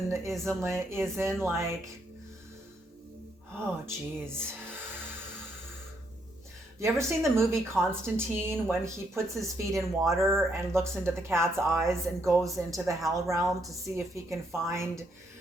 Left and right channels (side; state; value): both; normal; correlation 0.74